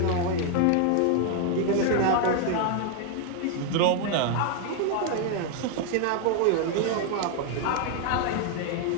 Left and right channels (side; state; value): both; different; correlation 0.00